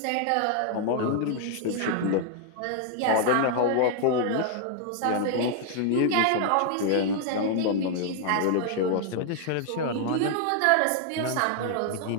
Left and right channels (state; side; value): different; both; correlation 0.00